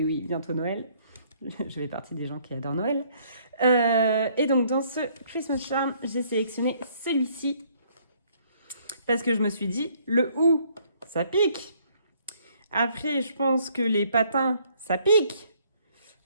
bientôt Noël. Je fais partie des gens qui adorent Noël. Et donc dans ce Christmas Charm, j'ai sélectionné celui-ci parce que je me suis dit le ou ça pique. Après je pense que les patins ça pique.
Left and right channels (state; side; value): inverted; both; correlation -0.64